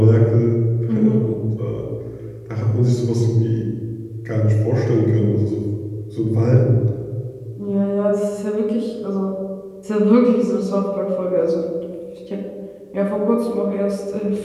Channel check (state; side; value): identical; both; correlation 1.00